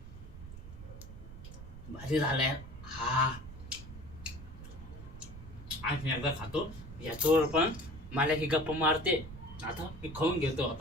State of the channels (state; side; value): noise; right; rumble, 13 dB below the sound